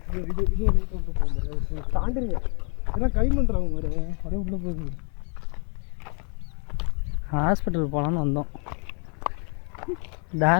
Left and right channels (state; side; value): quieter; right; 38.5 dB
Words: ஹாஸ்பிட்டல் போகலான்னு வந்தோம்.